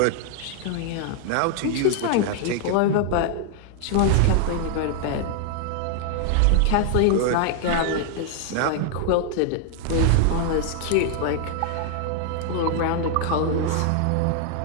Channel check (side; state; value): both; different; correlation 0.00